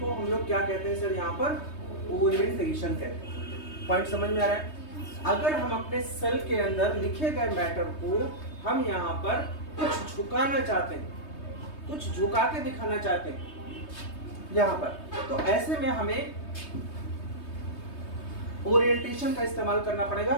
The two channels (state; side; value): late; right; 3.2 ms